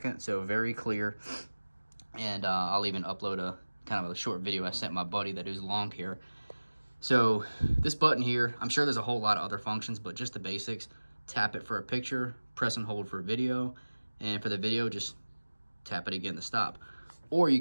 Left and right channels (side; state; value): both; inverted; correlation -1.00